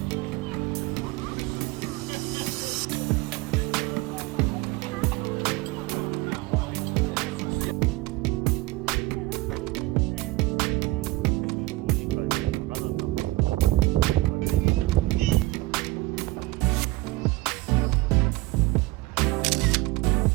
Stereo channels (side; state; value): left; quieter; 20.0 dB